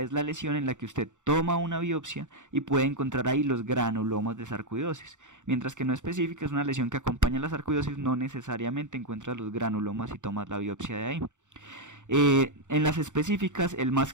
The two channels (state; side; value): late; left; 0.85 ms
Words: la lesión en la que usted toma una biopsia y puede encontrar ahí los granulomas de sarcoidosis, mientras que no específica es una lesión que acompaña a la sarcoidosis, no necesariamente encuentras los granulomas y tomas la biopsia de ahí. En las específicas, el más